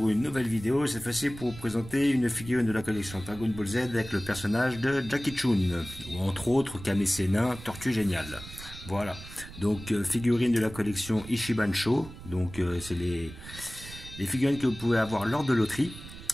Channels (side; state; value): right; noise; rumble, 14 dB below the sound